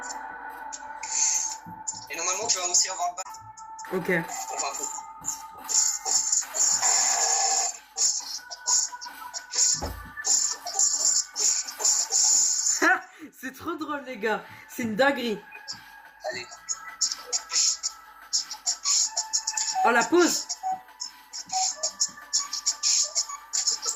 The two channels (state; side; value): identical; both; correlation 1.00